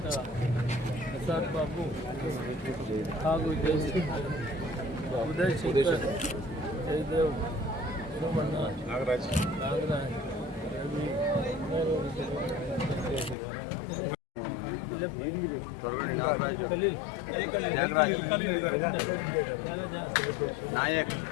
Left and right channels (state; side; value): drops out; right; at 13.4 s